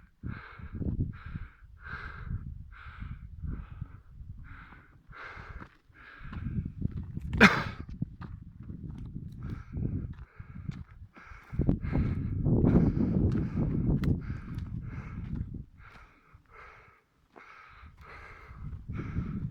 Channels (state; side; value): identical; both; correlation 1.00